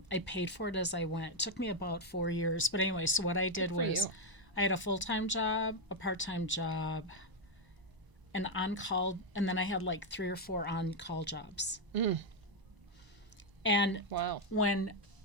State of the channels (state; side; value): late; left; 1.0 ms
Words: paid for it as I went. It took me about 4 years. But anyway, so what I did for was you. I had a full-time job, a part-time job, an on-call, and then I had like 3 or 4 on-call jobs. And Wow. when